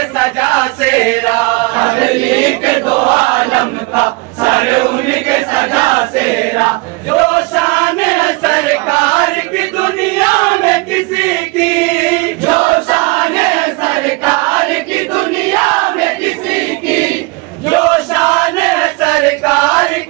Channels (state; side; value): quieter; left; 26.3 dB